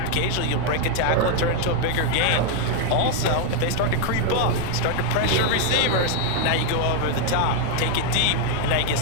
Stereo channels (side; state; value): both; different; correlation 0.00